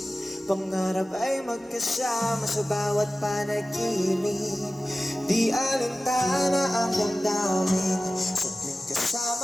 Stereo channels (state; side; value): normal; both; correlation 0.96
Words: pangarap ay magkasama sa bawat panaginip. Di alintana ang damdamin, saglit